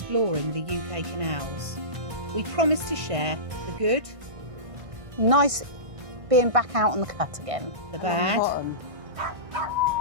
the UK canals. We promise to share the good, nice being back out on the cut again. the bad,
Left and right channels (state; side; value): late; left; 1.6 ms